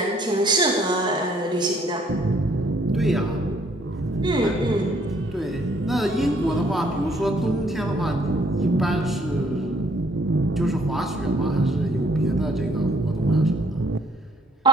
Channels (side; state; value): both; normal; correlation 0.64